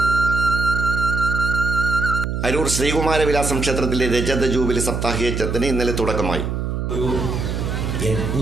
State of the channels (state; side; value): noise; right; hum, 2 dB below the sound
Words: അരൂർ ശ്രീകുമാരവിലാസം ക്ഷേത്രത്തിലെ രജത ജൂബിലി സപ്താഹയജ്ഞത്തിന് ഇന്നലെ തുടക്കമായി. ഒരു